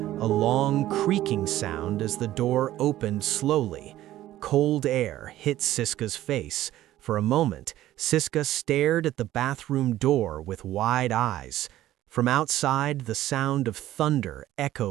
a long creaking sound as the door opened slowly. Cold air hit Siska's face. For a moment, Siska stared at the bathroom door with wide eyes. From outside, the sound of thunder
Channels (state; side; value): quieter; left; 14.2 dB